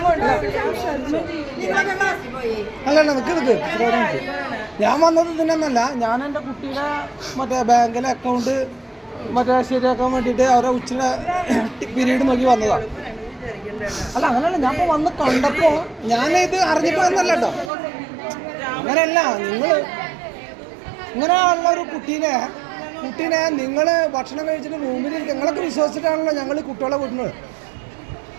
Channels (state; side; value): drops out; left; at 17.7 s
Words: അല്ല നിക്ക് ഞാൻ വന്നത് ഇതിനൊന്നല്ല. ഞാൻ എൻ്റെ കുട്ടിയുടെ മറ്റേ ബാങ്കിലെ അക്കൗണ്ട് മറ്റേ ശരിയാക്കാൻ വേണ്ടിയിട്ട് അവരെ ഉച്ചയുടെ പീരീഡ് നോക്കി വന്നതാണ്. അല്ല അങ്ങനെയല്ല, ഞാൻ ഇപ്പോൾ വന്ന് കണ്ടപ്പോൾ ഞാനിത് അറിഞ്ഞിട്ട് വന്നല്ല കേട്ടോ. അങ്ങനെയല്ല, നിങ്ങൾ ഇങ്ങനെയുള്ള ഒരു കുട്ടീനെ നിങ്ങൾ ഭക്ഷണം കഴിച്ചിട്ട് റൂമിൽ നിങ്ങളൊക്കെ വിശ്വസിച്ചിട്ടാണല്ലോ ഞങ്ങൾ കുട്ടികളെ വിടുന്നത്.